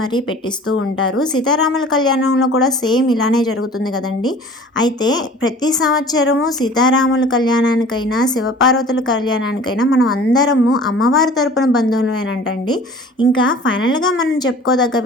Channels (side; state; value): both; normal; correlation 0.46